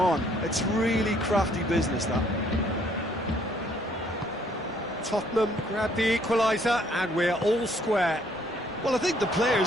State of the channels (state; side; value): normal; both; correlation 0.65